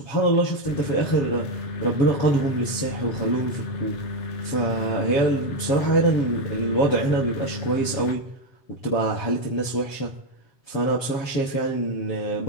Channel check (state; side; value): late; right; 7.4 ms